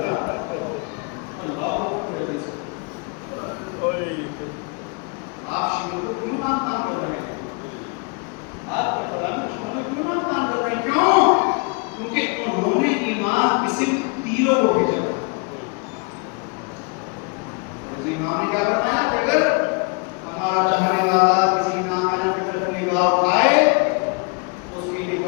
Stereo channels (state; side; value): quieter; right; 33.4 dB